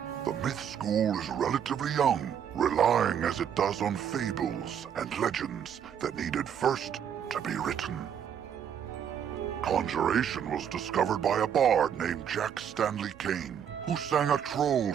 The myth school is relatively young, relying as it does on fables and legends that needed first to be written. Conjuration was discovered by a bard named Jack Stanley Kane, who sang a troll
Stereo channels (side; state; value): left; quieter; 8.5 dB